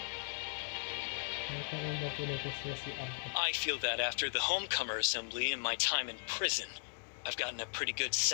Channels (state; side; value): silent; right; digital silence